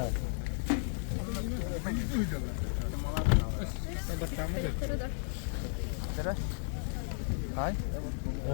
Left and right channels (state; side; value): silent; right; 55 dB below the other